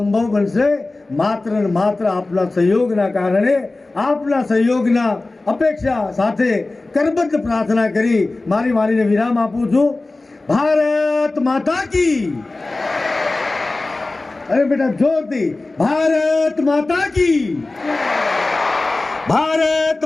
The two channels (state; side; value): quieter; right; 3.1 dB